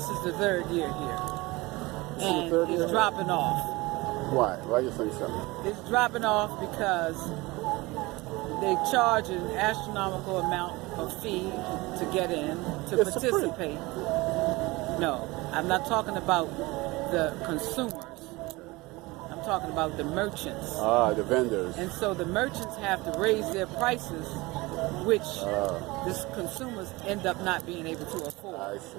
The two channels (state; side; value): quieter; left; 22.3 dB